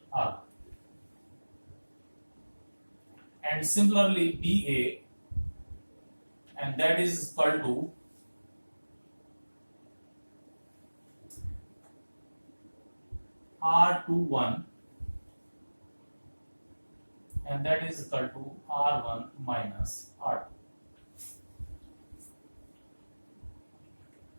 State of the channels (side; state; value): both; inverted; correlation -1.00